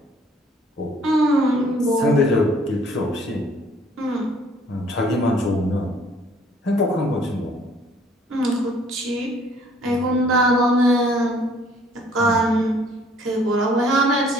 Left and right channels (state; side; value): normal; both; correlation 0.59